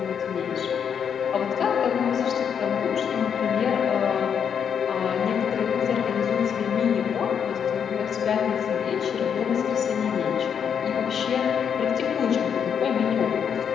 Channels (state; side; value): quieter; right; 7.7 dB